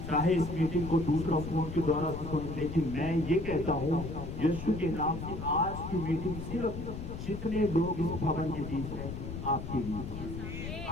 चाहे इस मीटिंग को दूसरा फोन के द्वारा सुन, लेकिन मैं ये कहता हूँ यीशु के नाम से आज की मीटिंग सिर्फ जितने लोग इस भवन के बीच हैं आपके लिए।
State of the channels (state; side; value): noise; left; rumble, 7 dB below the sound